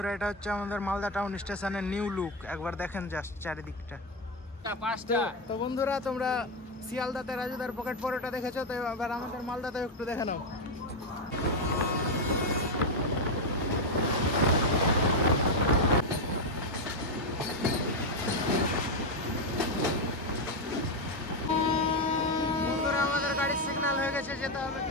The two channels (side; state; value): both; normal; correlation 0.07